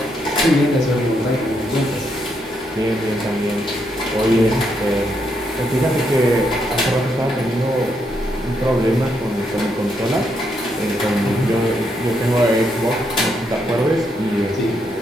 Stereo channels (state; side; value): normal; both; correlation 0.78